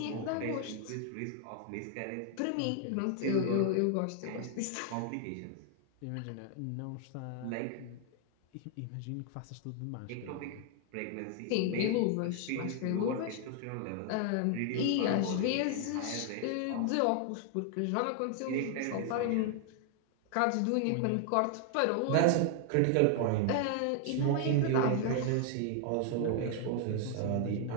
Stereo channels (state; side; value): different; both; correlation 0.00